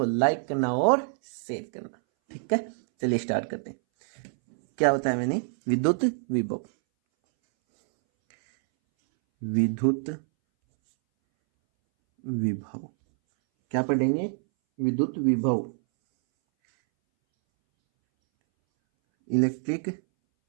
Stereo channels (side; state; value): left; silent; 61 dB below the other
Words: लाइक करना और शेयर करना। ठीक है, चलिए स्टार्ट करते हैं। क्या होता है मैंने विद्युत विभव। विद्युत विभव क्या पढ़ेंगे? विद्युत विभव, इलेक्ट्रिक